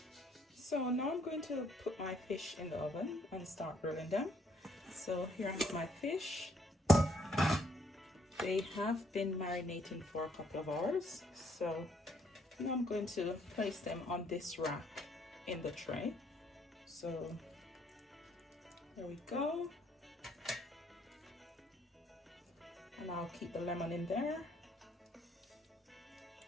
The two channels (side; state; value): both; normal; correlation 0.67